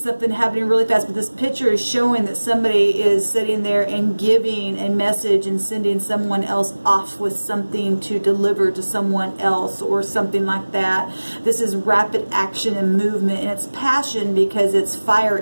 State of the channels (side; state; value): both; inverted; correlation -1.00